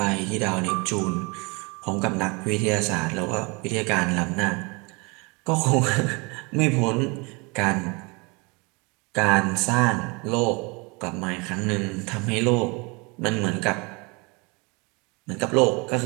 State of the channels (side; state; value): left; quieter; 29.2 dB